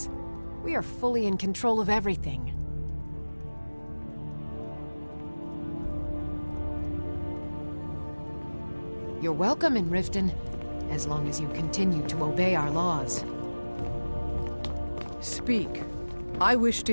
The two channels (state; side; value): inverted; both; correlation -1.00